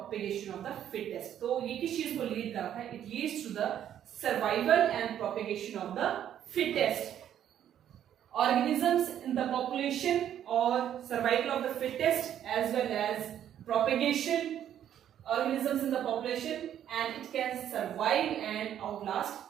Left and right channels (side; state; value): left; quieter; 10.4 dB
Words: of the fittest. तो ये किस चीज को लीड करता है? It leads to the survival and propagation of the fittest. Organisms in the population or survival of the fittest as well as propagation organisms in the population, and it can survive and outlast